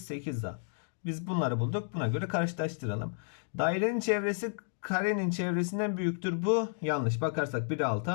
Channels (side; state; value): right; silent; digital silence